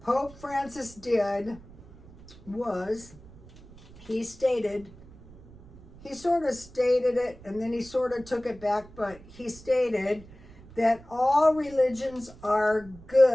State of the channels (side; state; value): right; noise; rumble, 21 dB below the sound